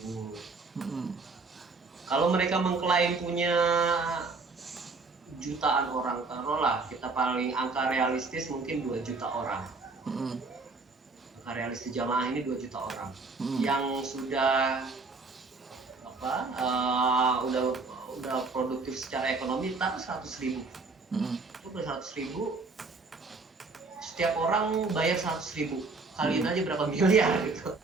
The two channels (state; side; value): quieter; left; 3.9 dB